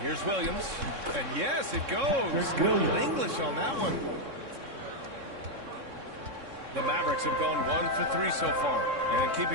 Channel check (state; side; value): late; left; 3.6 ms